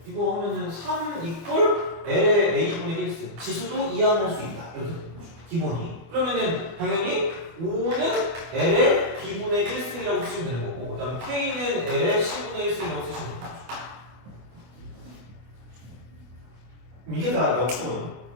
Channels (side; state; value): left; late; 25 ms